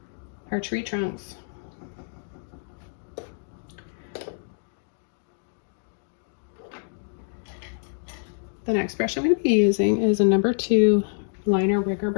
our tree trunks. The next brush I'm going to be using is a number 2 liner rigger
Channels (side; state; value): right; silent; digital silence